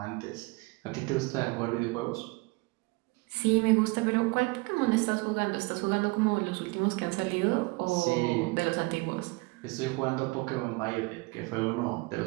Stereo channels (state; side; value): quieter; left; 25.9 dB